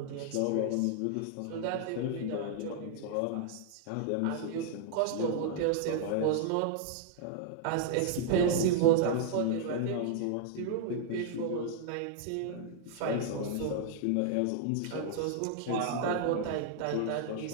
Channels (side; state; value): both; different; correlation -0.01